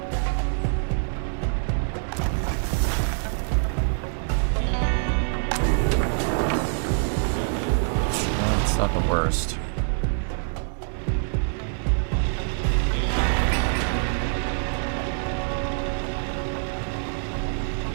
It's not the worst.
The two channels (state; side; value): silent; left; digital silence